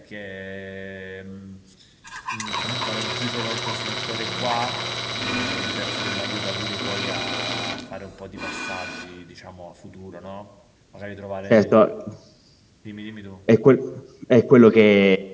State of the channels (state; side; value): identical; both; correlation 1.00